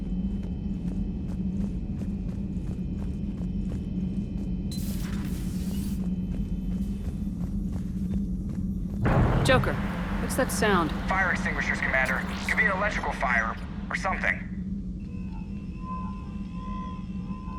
Joker, what's that sound? Fire extinguishers, Commander. Could be an electrical fire, or something.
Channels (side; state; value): both; identical; correlation 1.00